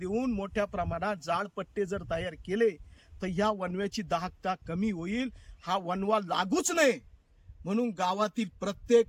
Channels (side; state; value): both; identical; correlation 1.00